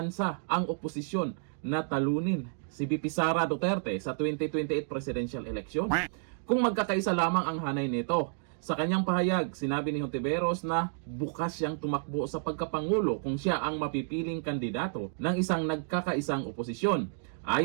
ang oposisyon na talunin si VP Sara Duterte sa 2028 presidential election kung magkakaisa lamang ang hanay nito. Sa kanyang pahayag, sinabi ni Hontiveros na bukas siyang tumakbo sa pagkapangulo kung siya ang mapipiling kandidato ng isang nagkakaisang oposisyon.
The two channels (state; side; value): silent; left; digital silence